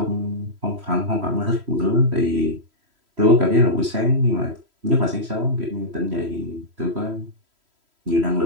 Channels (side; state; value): left; late; 3.1 ms